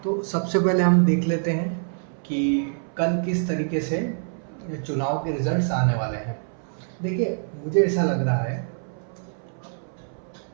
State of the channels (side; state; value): left; silent; 61 dB below the other